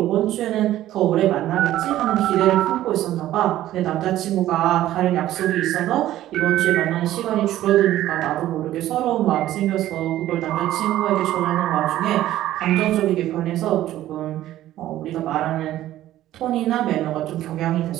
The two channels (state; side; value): quieter; left; 13.8 dB